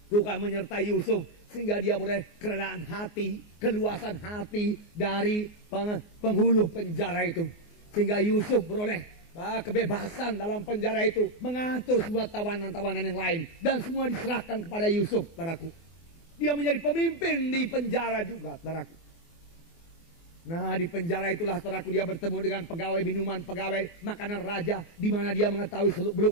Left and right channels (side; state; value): right; late; 24 ms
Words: Tuhan menyertai Yusuf sehingga dia boleh kerelaan hati, keluasan hati dari penghulu penjara itu. Sehingga Yusuf beroleh kebebasan dalam penjara itu, mengatur semua tawanan-tawanan yang lain, dan semua diserahkan kepada Yusuf, saudaraku. Dia menjadi pemimpin di penjara juga, saudaraku. Nah, di penjara itulah saudaraku dia bertemu dengan pegawai minuman, pegawai makanan raja, di mana dia mengetahui